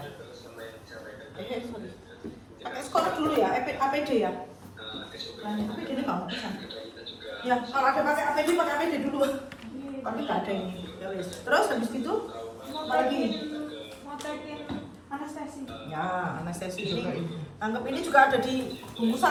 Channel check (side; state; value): both; identical; correlation 1.00